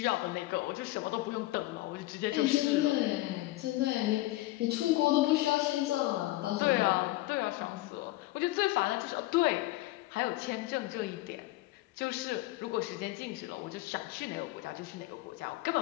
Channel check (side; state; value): right; quieter; 18.1 dB